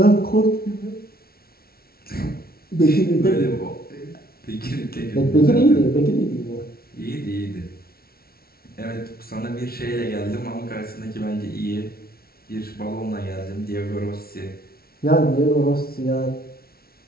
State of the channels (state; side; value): late; right; 0.44 ms